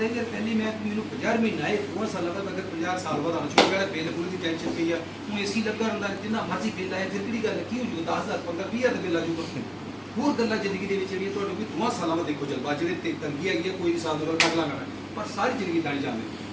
ਹੈ ਕਿ ਪਹਿਲੀ ਮੈਂ ਮੈਨੂੰ 50 ਮਹੀਨਾ ਆਏ 2 ਸਾਲਾਂ ਤੱਕ ਅਗਰ 50 ਸਾਲ ਬਾਅਦ ਆਉਣਾ ਸ਼ੁਰੂ ਕਰਿਆ ਬਿੱਲ ਪੂਰੀ ਦੀ ਟੈਨਸ਼ਨ ਪਈ ਆ ਹੁਣ ਏਸੀ ਲੱਗਾ ਹੁੰਦਾ ਜਿੰਨਾ ਮਰਜ਼ੀ ਬਿੱਲ ਆਏ ਫਿਰ ਕਿਹੜੀ ਗੱਲ ਕੀ ਹੋ ਜੂਗਾ 10,000 15,000 ਦਾ ਬਿੱਲ ਆ ਜੂਗਾ ਹੋਰ ਗੱਲਾਂ ਜ਼ਿੰਦਗੀ ਦੇ ਵਿੱਚ ਜਿਹੜੀਆਂ ਤੁਹਾਡੇ ਵੀ 2 ਸਾਲਾਂ ਬਾਅਦ ਦੇਖੋ ਜਲਵਾ ਜਿਹੜੇ ਤੇ ਤੰਗੀ ਹੈਗੀ ਆ ਕੋਈ ਵੀ ਸਾਲ ਦੋ ਕੱਢ ਲਾਂਗਾ ਪਰ ਸਾਰੀ ਜ਼ਿੰਦਗੀ ਤਾਂ ਨਹੀਂ ਜਾਂਦੇ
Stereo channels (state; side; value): identical; both; correlation 1.00